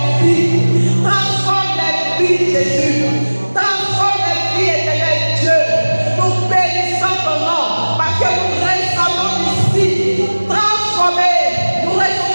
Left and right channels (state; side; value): inverted; both; correlation -1.00